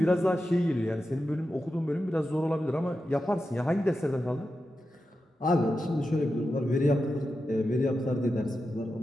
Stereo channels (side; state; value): both; normal; correlation 0.90